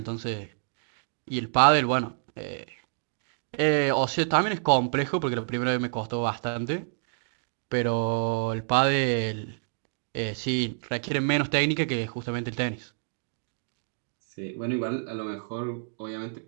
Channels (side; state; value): left; silent; digital silence